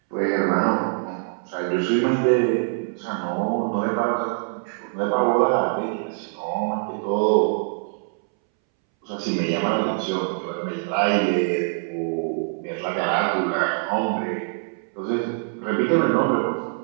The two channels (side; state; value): left; silent; 63 dB below the other